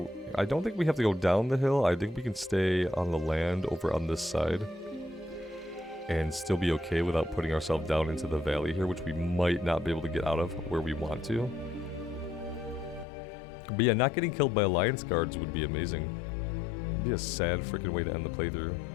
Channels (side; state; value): right; drops out; at 13.1 s